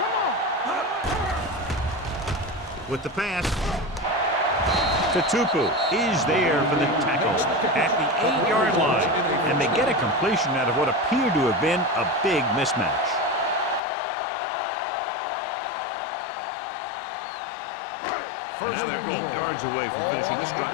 With the pass, Tutupu is there for the tackle at the 8-yard line. And they get a completion out of what appeared to have been a big mismatch. And now they're 8 yards away from finishing this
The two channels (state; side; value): drops out; right; at 13.8 s